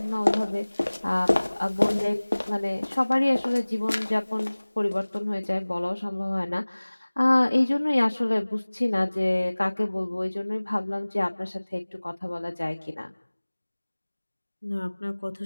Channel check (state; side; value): inverted; both; correlation -1.00